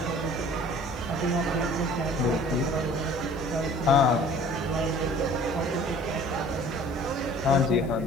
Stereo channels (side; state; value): left; noise; hiss, 26 dB below the sound